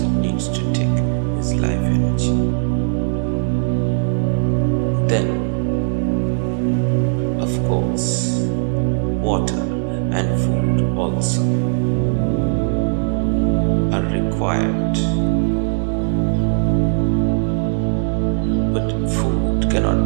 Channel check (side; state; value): left; silent; digital silence